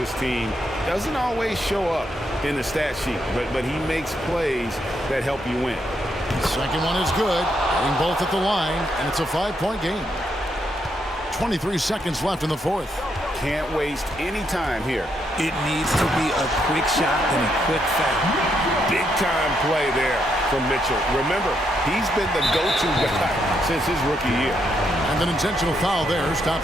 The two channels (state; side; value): normal; both; correlation 0.78